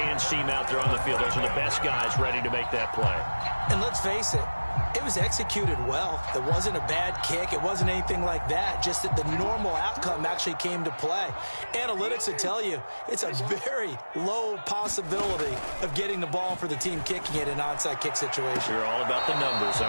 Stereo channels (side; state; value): both; inverted; correlation -1.00